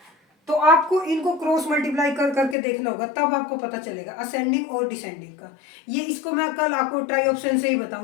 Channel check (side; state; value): right; drops out; at 2.6 s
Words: तो आपको इनको क्रॉस मल्टीप्लाई कर करके देखना होगा, तब आपको पता चलेगा असेंडिंग और डिसेंडिंग का। ये इसको मैं कल आपको ट्राई ऑप्शन से ही